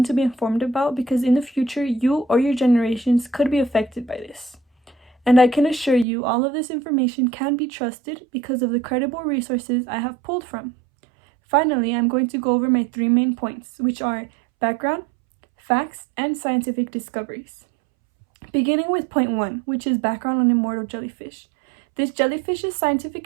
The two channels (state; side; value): drops out; left; at 6.1 s